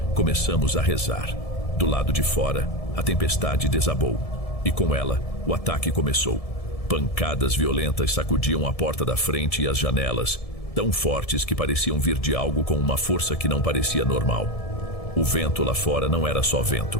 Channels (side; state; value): right; late; 1.7 ms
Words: começamos a rezar. Do lado de fora, a tempestade desabou. E com ela, o ataque começou. Pancadas violentas sacudiam a porta da frente e as janelas, tão fortes que pareciam vir de algo com uma força que não parecia normal. O vento lá fora não era só vento.